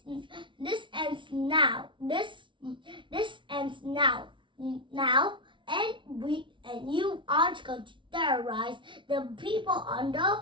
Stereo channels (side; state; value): left; late; 0.24 ms